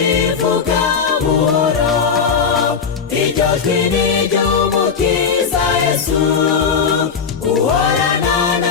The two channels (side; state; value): right; quieter; 6.1 dB